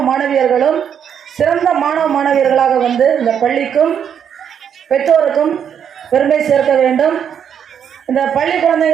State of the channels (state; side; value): quieter; left; 8.3 dB